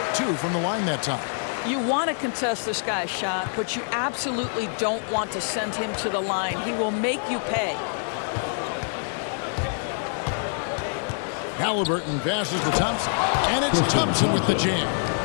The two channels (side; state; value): right; silent; 61 dB below the other